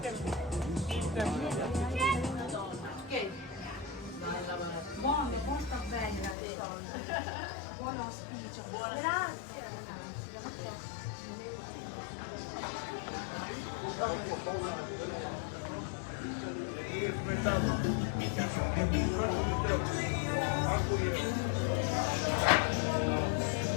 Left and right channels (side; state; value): right; drops out; at 6.4 s